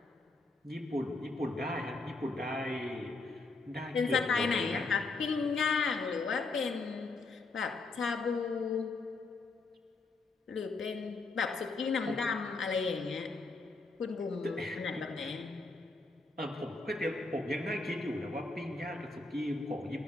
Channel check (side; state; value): right; quieter; 3.6 dB